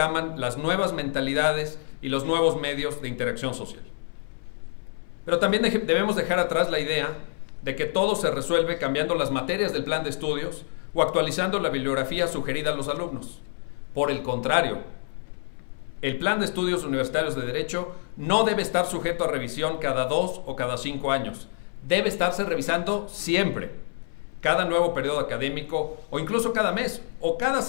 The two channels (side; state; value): right; silent; 60 dB below the other